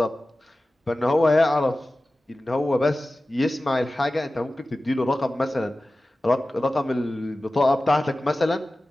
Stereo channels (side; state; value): both; normal; correlation 0.96